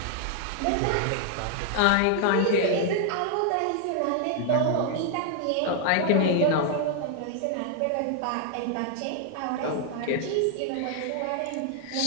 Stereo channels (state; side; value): different; both; correlation 0.00